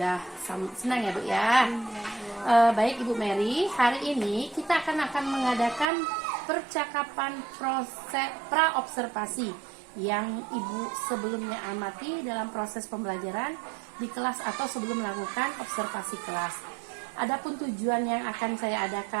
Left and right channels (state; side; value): drops out; left; at 5.9 s